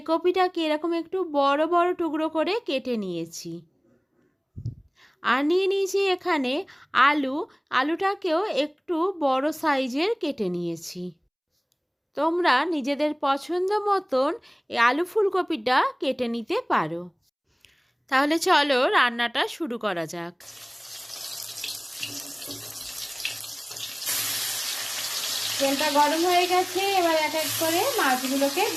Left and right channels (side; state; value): both; identical; correlation 1.00